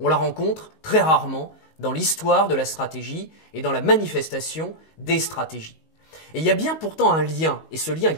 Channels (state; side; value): late; right; 19 ms